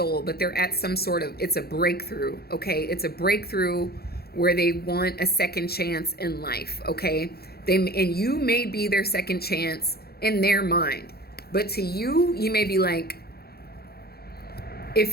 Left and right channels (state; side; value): late; right; 0.46 ms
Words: but they're at some sort of, it's a breakthrough, okay? It's a breakthrough where they want a second chance in life, okay? And you may be their second chance in their mind. But to you, you may be like,